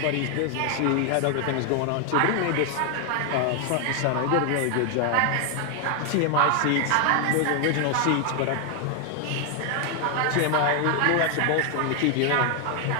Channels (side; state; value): both; different; correlation 0.01